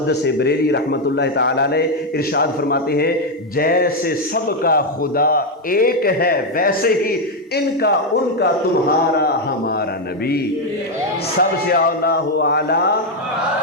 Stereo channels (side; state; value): both; normal; correlation 0.04